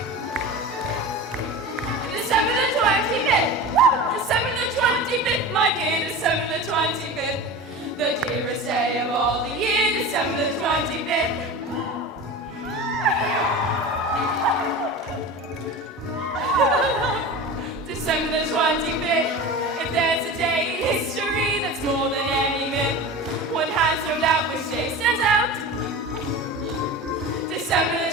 December the 25th. Woo! December the 25th, my dear, December the 25th, the dearest day of all the year. December the 25th. December the 25th. If there's a day in history that's more than any myth, one has no doubt which day stands out. December the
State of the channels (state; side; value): normal; both; correlation 0.31